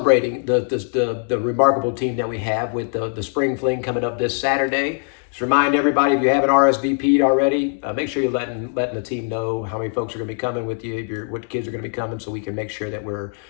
the remarkable team that we have with the Spring Fling coming up this Saturday. Just remind everybody, if you haven't RSVP'd already, make sure you're letting the team know how many folks are going to be coming with you, what kids are going to be coming, so we can make sure that we're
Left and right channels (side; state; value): right; silent; 55 dB below the other